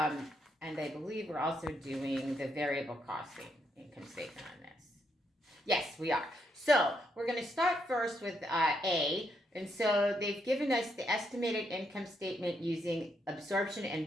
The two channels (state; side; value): normal; both; correlation 0.77